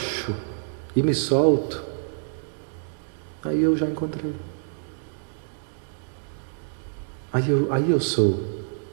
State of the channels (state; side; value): silent; left; digital silence